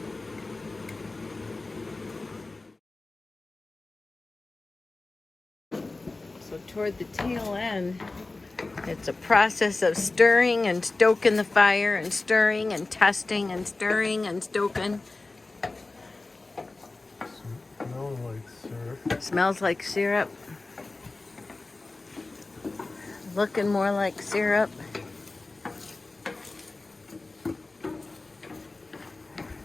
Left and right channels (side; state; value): right; quieter; 3.3 dB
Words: So toward the tail end, it's a process of stirring and stoking the fire and stirring and testing and stirring and stoking. Smell like syrup. Smells like syrup. Looking more like syrup.